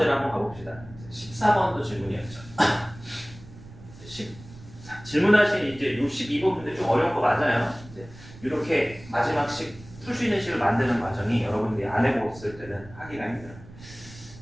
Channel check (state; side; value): noise; right; rumble, 19 dB below the sound